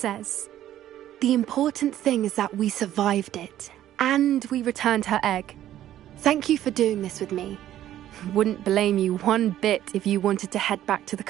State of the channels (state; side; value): quieter; left; 12.4 dB